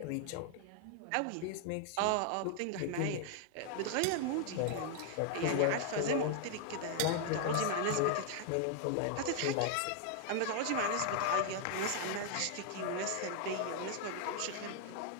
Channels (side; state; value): both; different; correlation 0.00